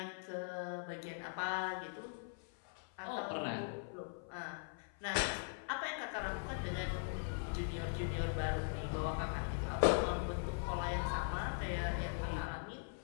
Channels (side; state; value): right; silent; 50 dB below the other